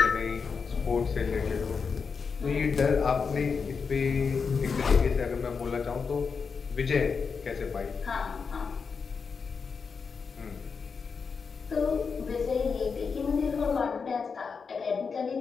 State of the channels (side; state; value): right; quieter; 5.5 dB